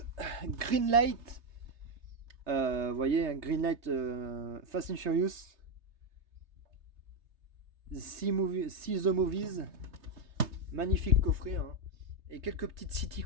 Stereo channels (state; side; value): late; left; 3.3 ms